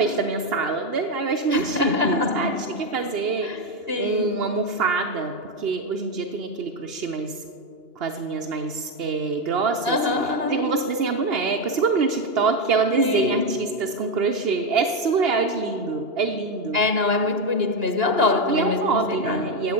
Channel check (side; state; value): left; late; 2.8 ms